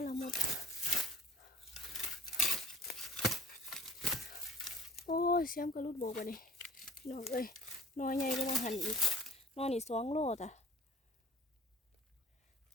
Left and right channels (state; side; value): normal; both; correlation 0.49